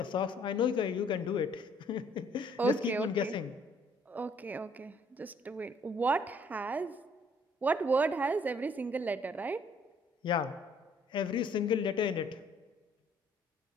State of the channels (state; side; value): normal; both; correlation 0.62